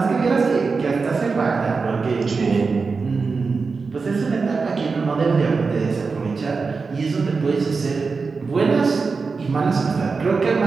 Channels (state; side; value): quieter; left; 4.6 dB